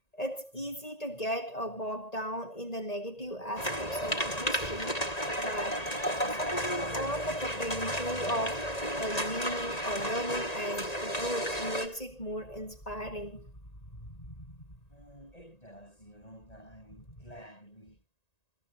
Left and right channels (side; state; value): right; late; 1.9 ms